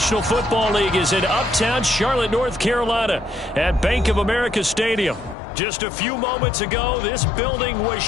Football League is in uptown Charlotte, North Carolina at Bank of America Stadium. Just a few moments ago, this building was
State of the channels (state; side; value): drops out; right; at 5.4 s